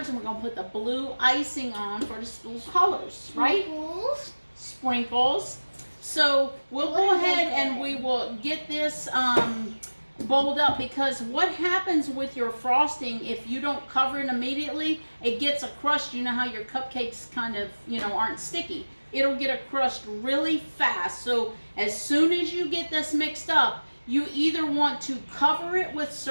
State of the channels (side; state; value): both; inverted; correlation -1.00